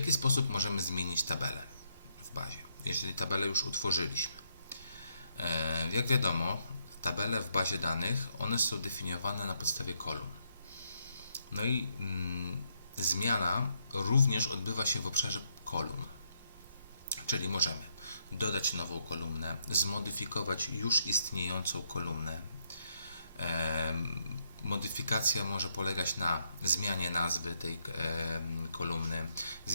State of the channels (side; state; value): both; inverted; correlation -0.76